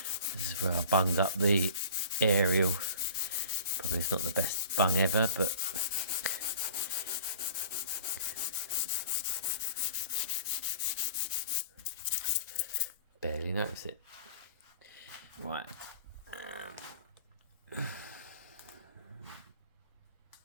This is where I bunged up the aerial. Probably it's not the best bung ever, but barely notice it. Right.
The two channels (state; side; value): inverted; both; correlation -0.44